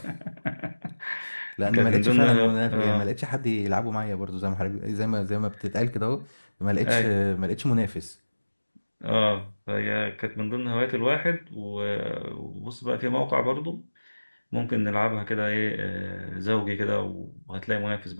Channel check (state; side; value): inverted; both; correlation -1.00